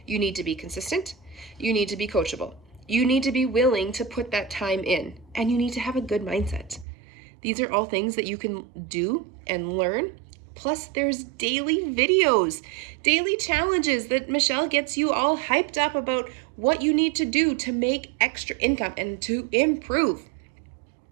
You need to be consistent. You need to be coachable. You need to be willing to put that time in, and you need to have a good mindset. These are all things that you can do and learn. Plus, there's daily videos, daily challenges that Michelle gets you all hyped up about what you need to do to make extra income and to improve.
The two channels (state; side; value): drops out; left; at 6.9 s